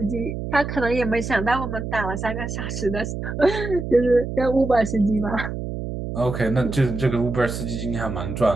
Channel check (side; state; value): right; noise; hum, 5 dB below the sound